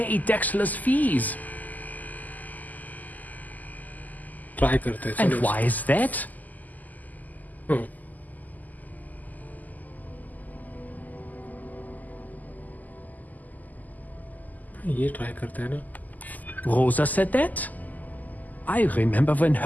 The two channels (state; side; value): late; right; 0.081 ms